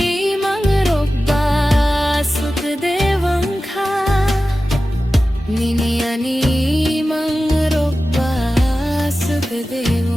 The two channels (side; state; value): both; normal; correlation 0.94